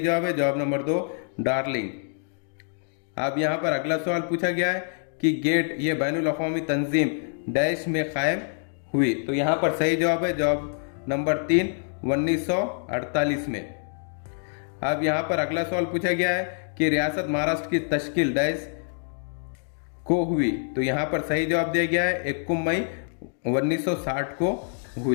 है, जवाब नंबर 2 डार्लिंग। अब यहाँ पर अगला सवाल पूछा गया है कि गेट ये बैनुल अक़वामी तंजीम डैश में कायम हुई। तो यहाँ पर सही जवाब है, जवाब नंबर 3 1948 में। अब यहाँ पर अगला सवाल पूछा गया है कि रियासत महाराष्ट्र की तश्कील डैश को हुई। तो यहाँ पर सही जवाब दिया गया है 21 मई 1960 को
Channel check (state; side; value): silent; right; 61 dB below the other